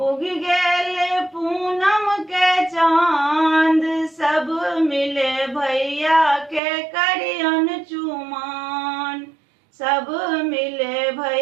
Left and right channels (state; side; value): drops out; left; at 6.6 s